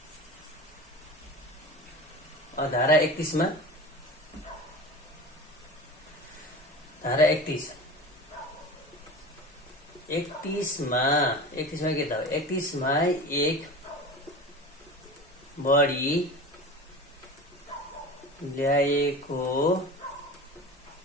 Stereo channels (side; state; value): both; normal; correlation 0.33